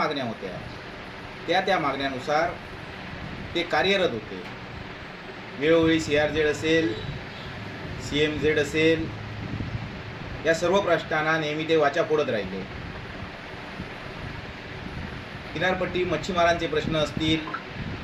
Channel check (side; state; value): both; identical; correlation 1.00